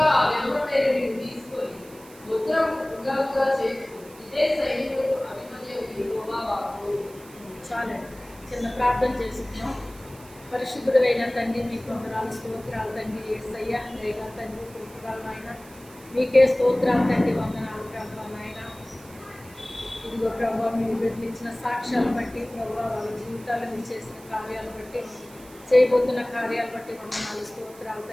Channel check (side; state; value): right; noise; hiss, 22 dB below the sound